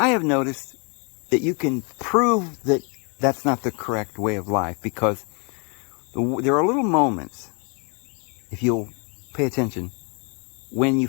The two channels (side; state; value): right; quieter; 34.5 dB